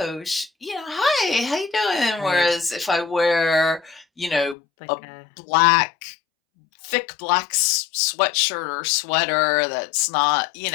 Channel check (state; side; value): drops out; right; at 4.5 s